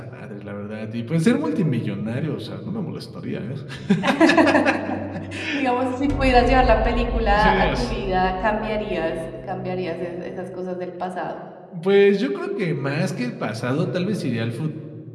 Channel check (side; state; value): both; identical; correlation 1.00